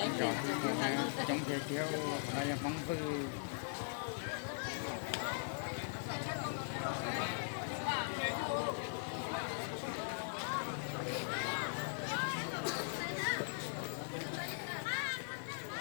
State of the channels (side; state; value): right; silent; digital silence